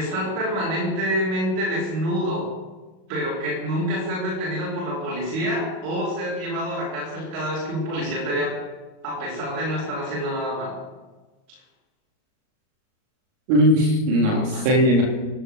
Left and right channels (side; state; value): left; late; 38 ms